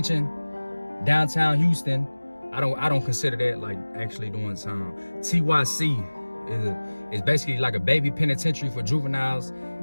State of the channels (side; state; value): both; inverted; correlation -1.00